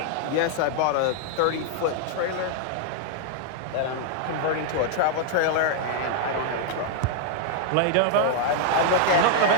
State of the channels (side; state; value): both; different; correlation -0.01